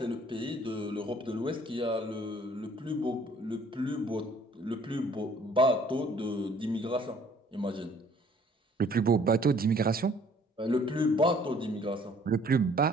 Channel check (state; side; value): normal; both; correlation 0.57